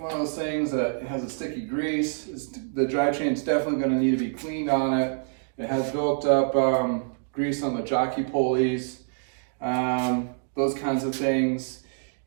of those things that has a sticky grease. The drivetrain's definitely going to need to be cleaned on it. It has built up grease on the jockey pulleys. Those kinds of things,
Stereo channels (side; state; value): left; silent; digital silence